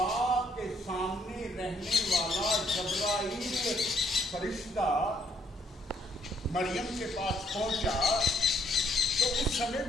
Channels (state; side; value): normal; both; correlation 0.69